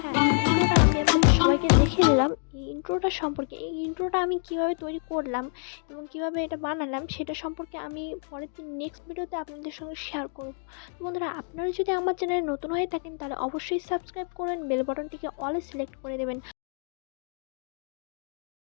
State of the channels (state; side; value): silent; right; 59 dB below the other